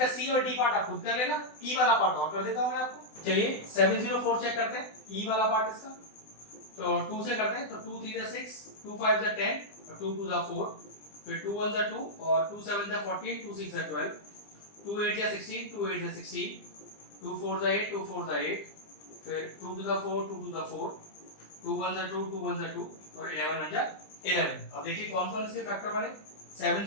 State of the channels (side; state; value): right; late; 20 ms